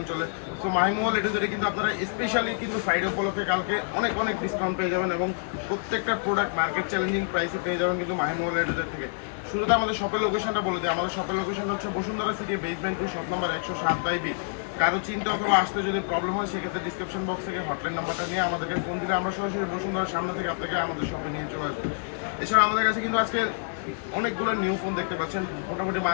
চলে। সো মাই মোবাইল এডিটরে কিন্তু আপনারা স্পেশালি কিন্তু ফ্রাইডে উপলক্ষে কালকে অনেক অনেক ডিসকাউন্ট পেয়ে যাবেন এবং প্রত্যেকটা প্রোডাক্ট মার্কেট চ্যালেঞ্জিং প্রাইসে পেয়ে যাবেন কিন্তু মাই মোবাইল এডিটর থেকে। শুরুতে আমাদের শপের লোকেশনটা বলে দিই। আমাদের শপের লোকেশনটা হচ্ছে Bashundhara city basement 2 shop number 107/B। কারো চিন্তা অথবা আসতে যদি প্রবলেম হয় সেক্ষেত্রে ডিসক্রিপশন বক্স থেকে হটলাইন নাম্বারটা নিয়ে আমাদেরকে ফোন দিলে আমরা সরাসরি বসুন্ধরার সামনে থেকে আপনাকে আমাদের শপে নিয়ে চলে আসবো। এছাড়া আমাদের কাছে কিন্তু আজকে অনেকগুলো নিউ ফোন দেখতে পাচ্ছেন। মোটামুটি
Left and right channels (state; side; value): silent; right; 60 dB below the other